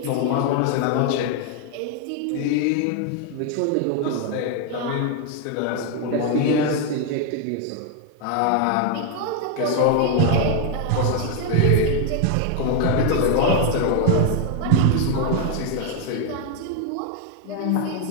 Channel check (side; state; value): both; different; correlation 0.01